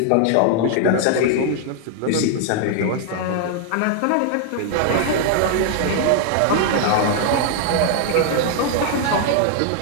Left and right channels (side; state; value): both; different; correlation 0.00